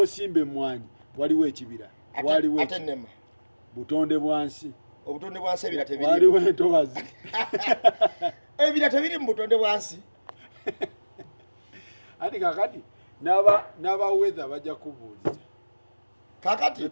emmwanyi waliwo ekibira waliwo atenema butonde bwansi obutonde bwansi ebira tebiri waliwo entobazi ebira tebiri mu butonde bwansi ati kakati n'aba weather bajja kubuuliza kakati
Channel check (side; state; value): both; inverted; correlation -1.00